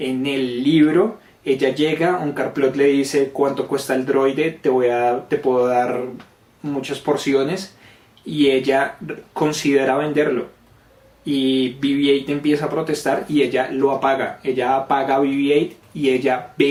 el libro ella llega, Onkar Plutt le dice cuánto cuesta el droide, te puedo dar muchas porciones y ella considera venderlo y BB-8 empieza a protestar y ella lo apaga, ella apaga a BB-8 y ella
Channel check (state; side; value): identical; both; correlation 1.00